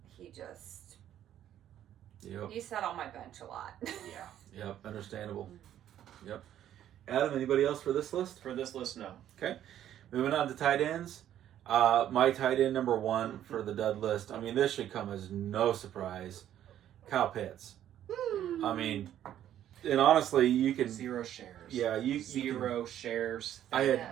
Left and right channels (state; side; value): quieter; left; 11.2 dB